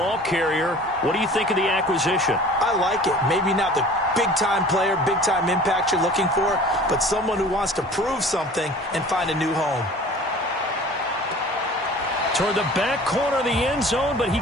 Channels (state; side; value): normal; both; correlation 0.44